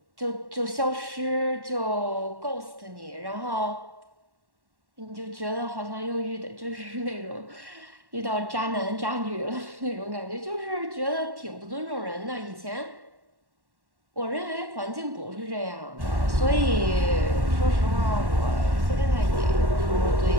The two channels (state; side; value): late; left; 1.1 ms